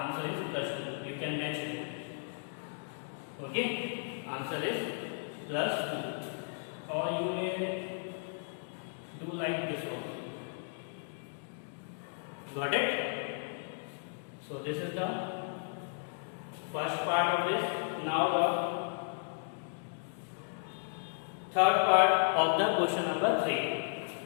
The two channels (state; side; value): silent; right; digital silence